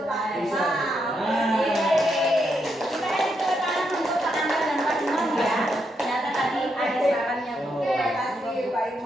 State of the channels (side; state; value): both; normal; correlation 0.80